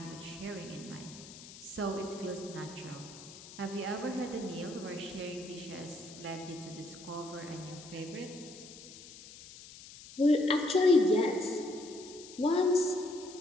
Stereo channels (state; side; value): noise; left; hiss, 16 dB below the sound